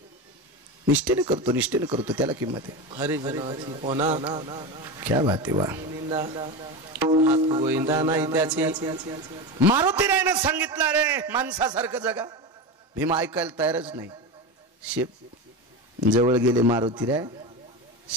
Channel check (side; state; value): both; normal; correlation 0.21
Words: निष्ठेने करतो, निष्ठेने करतो त्याला किंमत आहे. हरी जनाची कोणा क्या बात आहे. वा. गोविंदा नाही त्याची. मारुतीरायनं सांगितलं रे माणसासारखं जगा. भीम ऐकायला तयारच नाही. शेप जवळ गेले मारुतीराय,